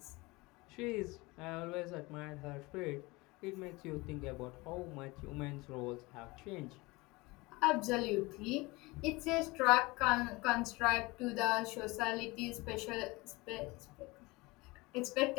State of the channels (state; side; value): quieter; right; 23.2 dB